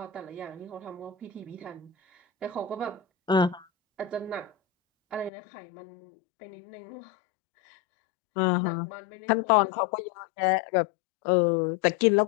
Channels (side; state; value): right; drops out; at 5.3 s